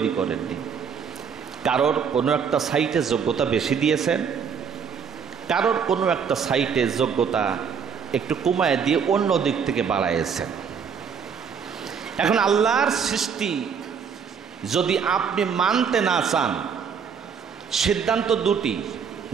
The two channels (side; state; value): left; quieter; 6.8 dB